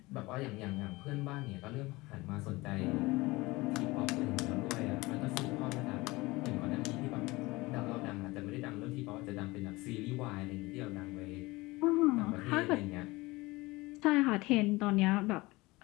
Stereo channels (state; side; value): quieter; right; 21.7 dB